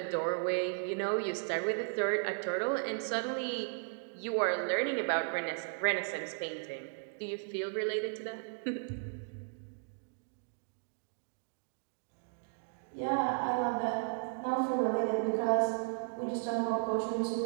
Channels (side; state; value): left; silent; digital silence